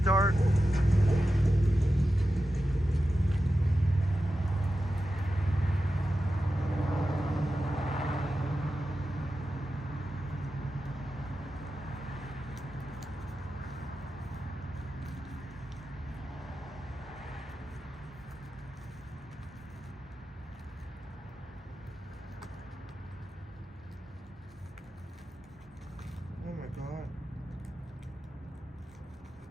Oh my God.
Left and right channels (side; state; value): both; normal; correlation 0.92